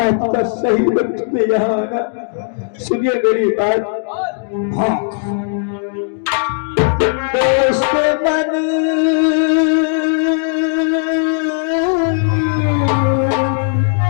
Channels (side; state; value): right; silent; digital silence